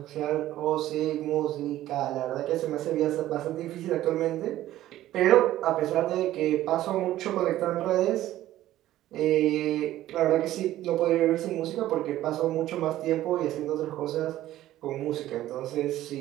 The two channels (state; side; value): quieter; left; 14.1 dB